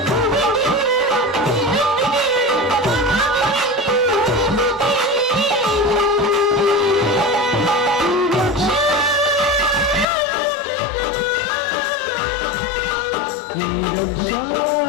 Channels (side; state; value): right; drops out; at 10.1 s